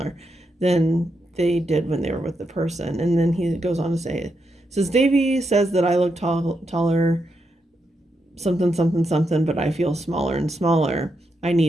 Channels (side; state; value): both; normal; correlation 0.83